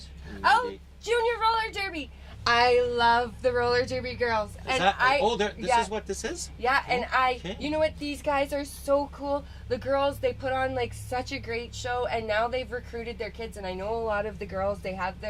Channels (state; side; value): identical; both; correlation 1.00